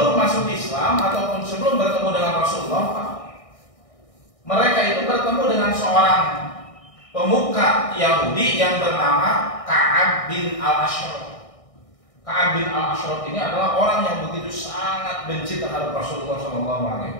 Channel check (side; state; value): right; late; 1.6 ms